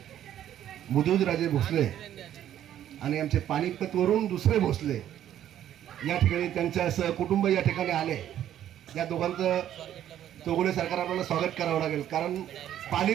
मुदोजीराजे भोसले आणि आमचे पानिपतवरून दुसरे भोसले या ठिकाणी त्यांच्या सहकुटुंब या ठिकाणी आले. या दोघांचं चौगुले सरकार आपल्याला स्वागत करावं लागेल, कारण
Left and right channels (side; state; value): left; quieter; 11.3 dB